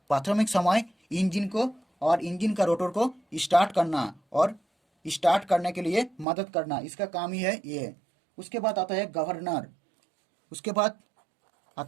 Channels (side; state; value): left; drops out; at 6.2 s